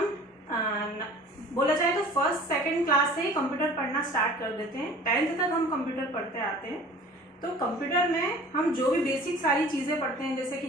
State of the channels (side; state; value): both; normal; correlation 0.46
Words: बोला जाए तो फर्स्ट सेकंड क्लास से ही कंप्यूटर पढ़ना स्टार्ट कर देते हैं, 10th तक हम कंप्यूटर पढ़ते आते हैं। तो कंप्यूटर में हम जो भी बेसिक सारी चीज़ें पढ़ते हैं जैसे कि